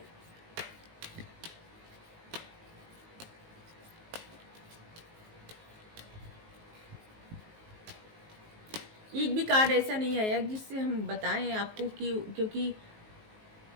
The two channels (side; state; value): left; late; 19 ms